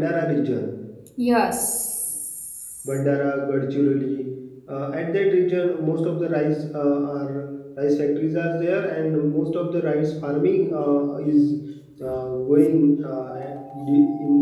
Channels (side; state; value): both; identical; correlation 1.00